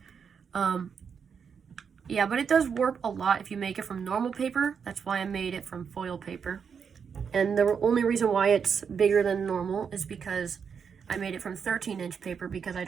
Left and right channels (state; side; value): quieter; left; 6.6 dB